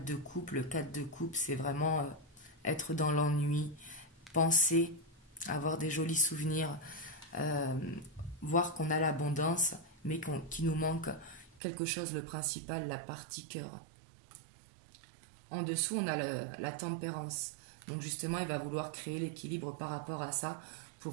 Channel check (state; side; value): drops out; left; at 11.6 s